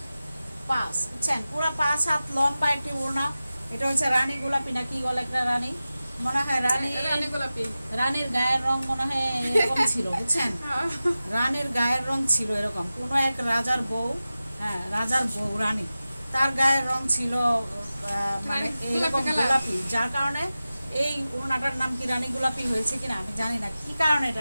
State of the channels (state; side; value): inverted; both; correlation -0.95